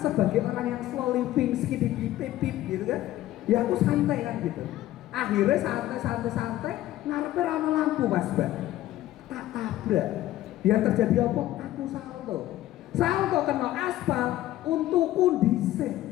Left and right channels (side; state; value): right; quieter; 14.6 dB